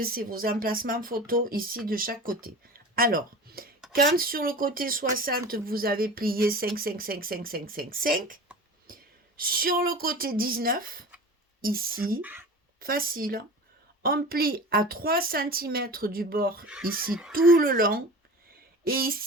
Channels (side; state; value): both; normal; correlation 0.36